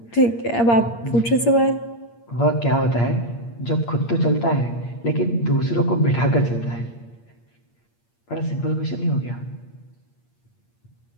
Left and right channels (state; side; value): late; right; 8.6 ms